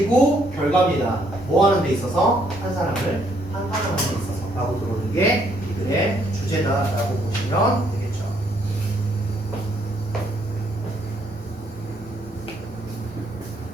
결과입니다. 뭐 하는 데 있어서? 한 사람을 판단하는 데 있어서 라고 들어오는 게 이들의 주제다라고 보시면 되겠죠.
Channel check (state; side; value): normal; both; correlation 0.69